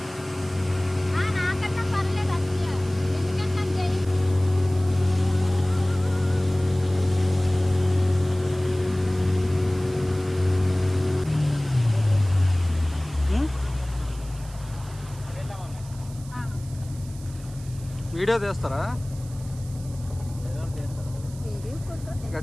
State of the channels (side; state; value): right; noise; hiss, 21 dB below the sound